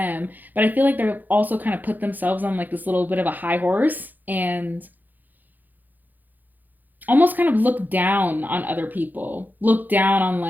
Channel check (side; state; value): left; late; 0.085 ms